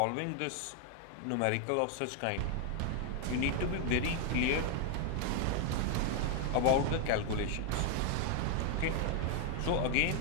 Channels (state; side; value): different; both; correlation 0.00